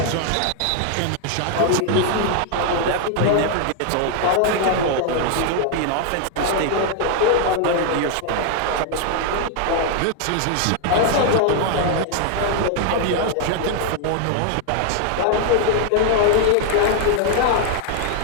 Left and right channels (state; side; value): different; both; correlation 0.00